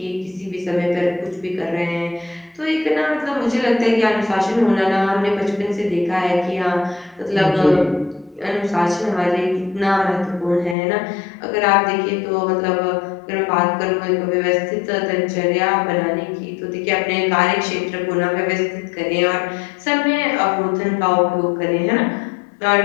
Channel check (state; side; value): drops out; right; at 10.8 s